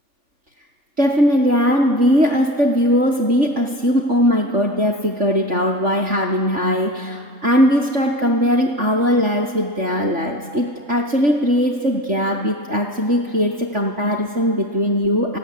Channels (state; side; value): late; left; 3.4 ms